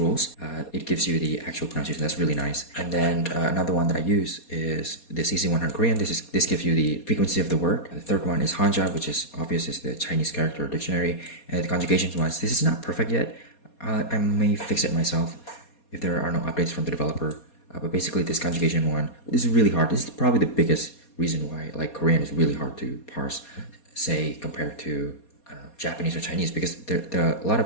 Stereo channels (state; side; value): late; right; 4.2 ms